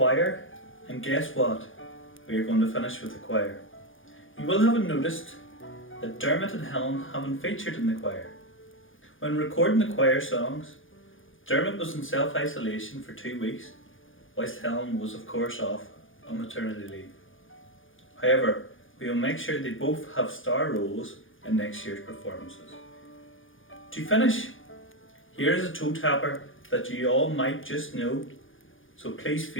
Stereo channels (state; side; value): late; right; 0.58 ms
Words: and guess what? We are going to finish with the choir. You will have noticed that Dermot and Helen haven't featured in the choir. When recording the choir songs, Dermot was in self-isolation for 2 weeks, whilst Helen was of course off on maternity leave. However, we will make sure they both have star roles in next year's performances. To finish, here is a toe tapper that you all might just know, so please